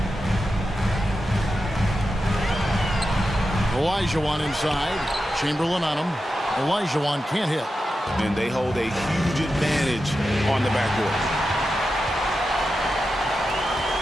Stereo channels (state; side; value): normal; both; correlation 0.90